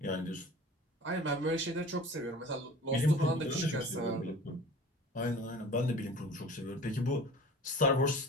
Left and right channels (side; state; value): both; normal; correlation 0.42